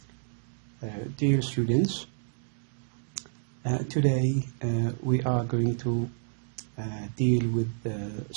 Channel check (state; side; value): silent; left; digital silence